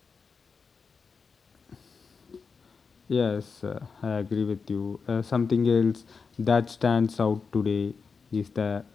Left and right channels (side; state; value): right; quieter; 5.2 dB